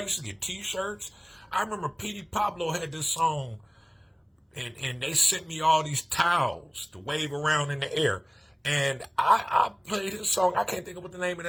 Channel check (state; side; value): identical; both; correlation 1.00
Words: used to get T-shirts. I remember Petey Pablo had this song, and they sent me all these towels to wave around in the air. And I played his song. I can't think of what the name of